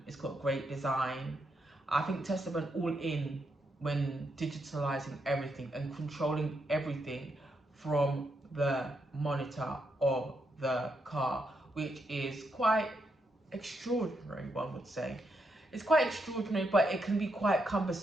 it's got great design. I think Tesla went all in when digitalizing everything and controlling everything from the monitor of the car, which is quite extraordinary, one would say. It's quite extraordinary, but it can be quite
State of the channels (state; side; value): normal; both; correlation 0.81